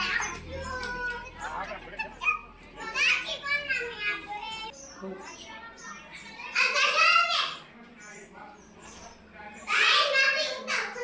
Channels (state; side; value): identical; both; correlation 1.00